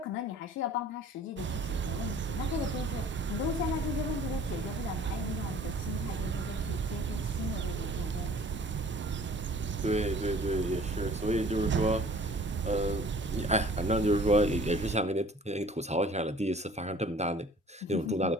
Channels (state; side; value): normal; both; correlation 0.50